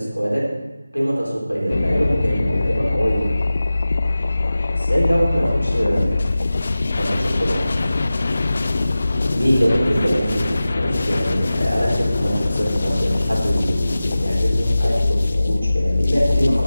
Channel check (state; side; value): inverted; both; correlation -0.96